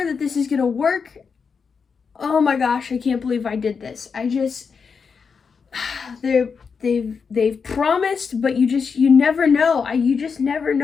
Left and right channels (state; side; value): quieter; right; 5.7 dB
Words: that this is gonna work. Oh my gosh, I can't believe I did this. They're they've promised, but you never know. You just never